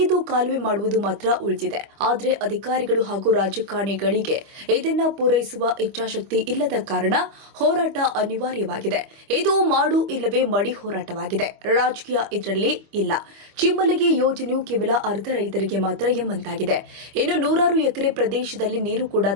ಕಾಲುವೆ ಮಾಡುವುದು ಮಾತ್ರ ಉಳಿದಿದೆ. ಆದರೆ ಅಧಿಕಾರಿಗಳು ಹಾಗೂ ರಾಜಕಾರಣಿಗಳಿಗೆ ಇದನ್ನ ಪೂರೈಸುವ ಇಚ್ಛಾಶಕ್ತಿ ಇಲ್ಲದ ಕಾರಣ ಹೋರಾಟ ಅನಿವಾರ್ಯವಾಗಿದೆ. ಇದು ಮಾಡು ಇಲ್ಲವೇ ಮಡಿ ಹೋರಾಟವಾಗಿದೆ. ರಾಜಕೀಯ ಇದರಲ್ಲಿ ಇಲ್ಲ. ಚಿಮ್ಮಲಗಿ ಯೋಜನೆಯು ಕೇವಲ ಅರ್ಧ ರೈತರಿಗೆ ಮಾತ್ರ ಎಂಬಂತಾಗಿದೆ. ಇನ್ನು ನೂರಾರು ಎಕರೆ ಪ್ರದೇಶದಲ್ಲಿ ನೀರು ಕೂಡ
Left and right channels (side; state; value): left; late; 25 ms